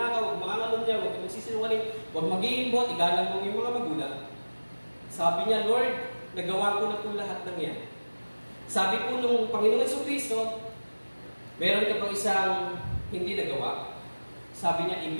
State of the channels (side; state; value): both; inverted; correlation -1.00